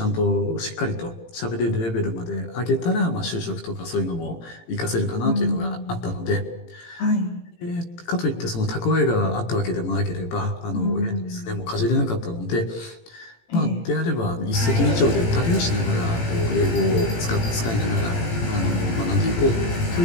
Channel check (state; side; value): late; right; 18 ms